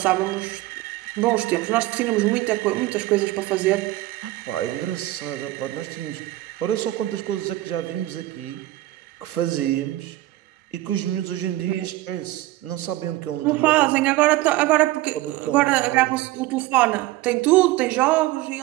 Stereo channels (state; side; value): quieter; left; 17.3 dB